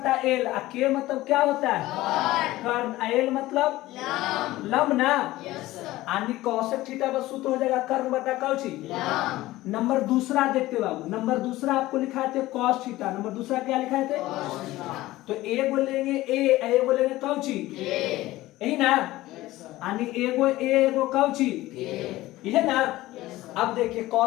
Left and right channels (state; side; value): quieter; right; 17.2 dB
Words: एल, के मतलब क्या होता है कर्म, एल मतलब लंब ना, यानी कोसेक थीटा का सूत्र हो जाएगा कर्म बटा कौची। नंबर दूसरा देखते बाबू, नंबर दूसरा आपको लिखा थे कॉस थीटा, नंबर दूसरा क्या लिखा थे तो ए बोलेंगे ए बोलेंगे कौची यही ना, यानी एगो एगो कौची यह ना। अब देखिए